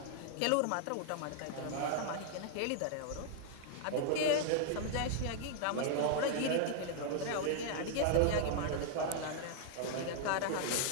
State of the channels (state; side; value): different; both; correlation -0.01